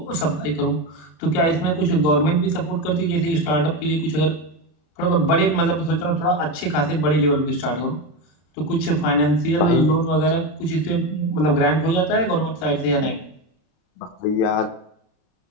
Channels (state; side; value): late; right; 33 ms